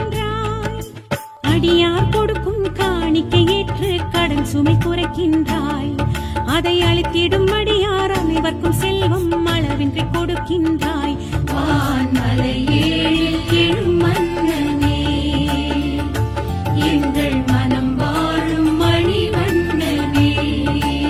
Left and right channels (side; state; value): both; identical; correlation 1.00